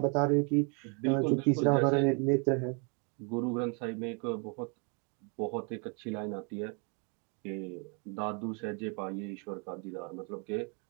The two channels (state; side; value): quieter; left; 36.4 dB